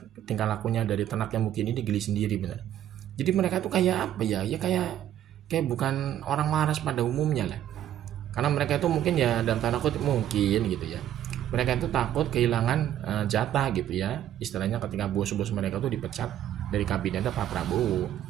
tingkah lakunya dari tenaknya Mukidi ini, geli sendiri bener. Jadi mereka tuh kayak apa ya? Ya kayak bukan orang waras pada umumnya lah. Karena mereka itu mungkin ya dalam tanda kutip mungkin gitu ya. Mereka itu takut kehilangan jatah gitu ya. Istilahnya ketika bos-bos mereka tuh dipecat dari kabinetnya Pak Prabowo.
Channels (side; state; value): left; quieter; 11.4 dB